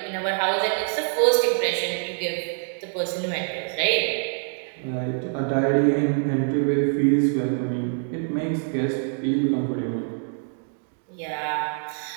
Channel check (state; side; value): silent; left; 62 dB below the other